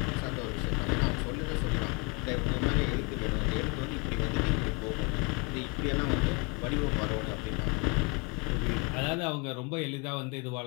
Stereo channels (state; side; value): quieter; right; 29.2 dB